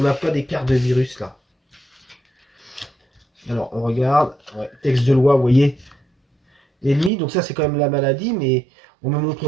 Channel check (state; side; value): drops out; left; at 7.1 s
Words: n'a pas d'écart de virus là. Alors, on regarde. Ouais, texte de loi, vous voyez. Ennemi, donc ça, c'est quand même la maladie, mais on ne me